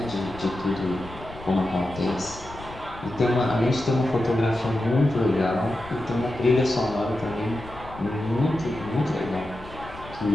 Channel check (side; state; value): left; noise; rumble, 16 dB below the sound